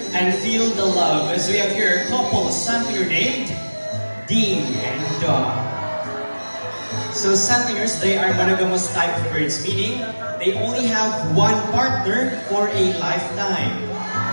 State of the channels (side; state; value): both; inverted; correlation -1.00